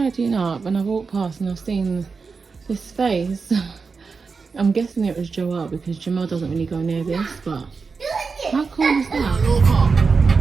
up and I walked past and I've seen this face. I'm guessing it was Joel because Jamal doesn't really go near this, but how cool is that?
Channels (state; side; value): quieter; left; 4.8 dB